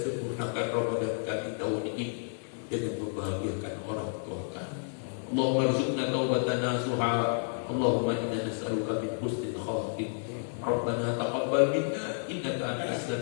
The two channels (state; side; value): silent; right; 57 dB below the other